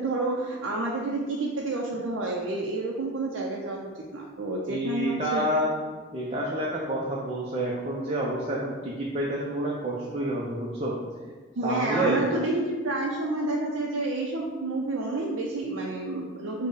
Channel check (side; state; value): both; normal; correlation 0.23